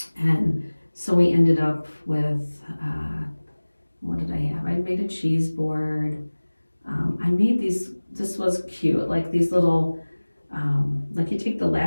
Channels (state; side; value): inverted; both; correlation -1.00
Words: And so we ended up with, what did I have? I made a cheese board. I made this was cute, like these little, like you take the